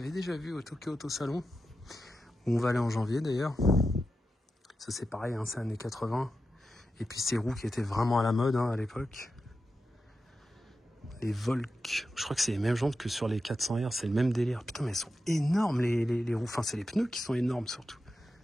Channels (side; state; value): both; normal; correlation 0.90